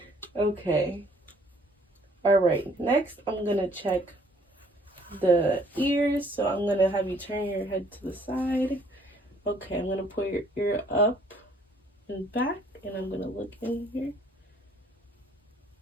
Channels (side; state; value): both; normal; correlation 0.61